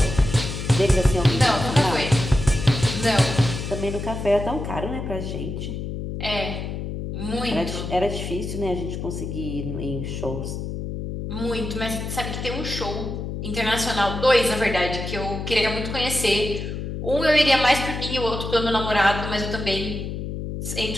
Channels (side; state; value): left; noise; hum, 5 dB below the sound